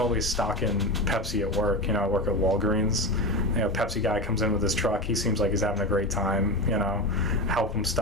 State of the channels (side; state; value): both; normal; correlation 0.21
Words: always stocking Pepsi at work. You know, I work at Walgreens. You know, Pepsi guy comes in with his truck. He seems like he's having a great time. You know, help him